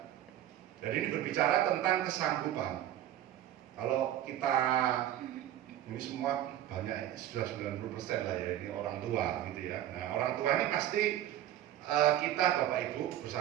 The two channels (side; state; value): left; quieter; 12.3 dB